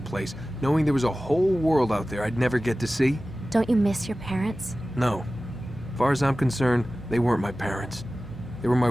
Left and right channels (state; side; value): normal; both; correlation 0.96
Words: place, knowing there was a whole world out there I'd never get to see? Don't you miss your parents? No. As far as I'm concerned, they weren't my parents. They were my